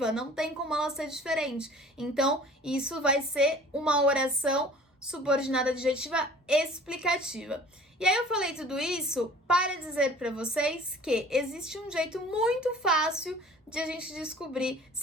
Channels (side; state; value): both; normal; correlation 0.47